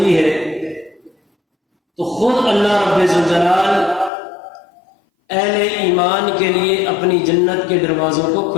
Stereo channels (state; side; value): drops out; right; at 4.1 s